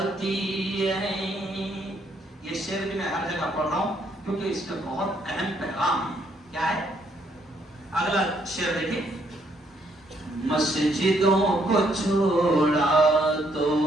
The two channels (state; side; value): normal; both; correlation 0.71